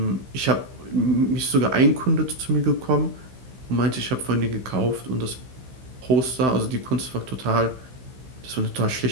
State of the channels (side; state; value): left; late; 15 ms